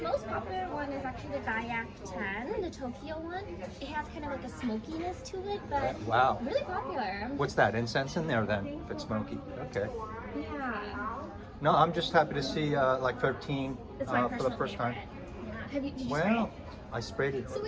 popular one is actually the Gaiac 10, the Tokyo one. It has kind of like a smokiness to it, but Wow. really popular. What's that, incense in there then, if it's smoky? Okay. Yeah. No, I'm just happy to see like 13 It's my for the personal first favorite. time. Yeah. Did you spray Well, it? I sprayed it So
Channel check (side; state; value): both; identical; correlation 1.00